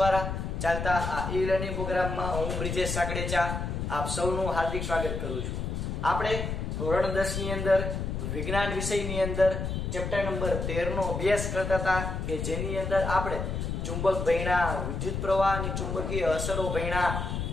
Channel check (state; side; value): noise; left; rumble, 3 dB below the sound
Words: ચાલતા આ ઈ લર્નિંગ પ્રોગ્રામમાં હું બ્રિજેશ સાકડેચા આપ સૌનું હાર્દિક સ્વાગત કરું છું. આપણે ધોરણ 10 ની અંદર વિજ્ઞાન વિષયની અંદર ચેપ્ટર નંબર 13 નો અભ્યાસ કરતા હતા કે જેની અંદર આપણે ચુંબક ભણ્યા, વિદ્યુત પ્રવાહની ચુંબકીય અસરો ભણ્યા,